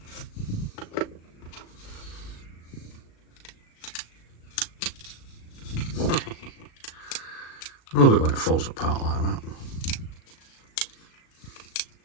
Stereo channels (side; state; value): right; late; 37 ms